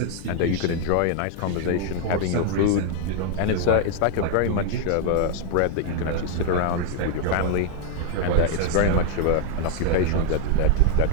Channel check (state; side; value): different; both; correlation 0.00